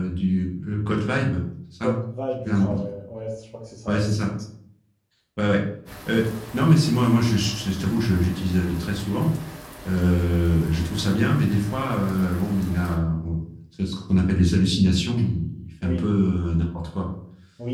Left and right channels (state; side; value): identical; both; correlation 1.00